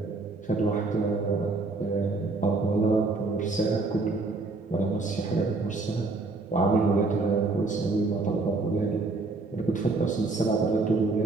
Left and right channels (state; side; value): quieter; left; 3.6 dB